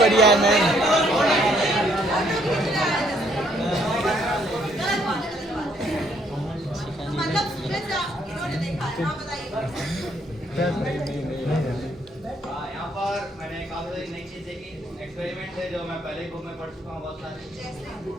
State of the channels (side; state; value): both; normal; correlation 0.68